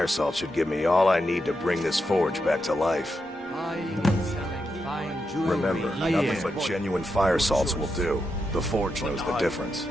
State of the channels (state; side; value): normal; both; correlation 0.85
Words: salt should give me all I need to bring this forge back to life. Remember, nothing but genuine fire salts will do. The forge knows the difference.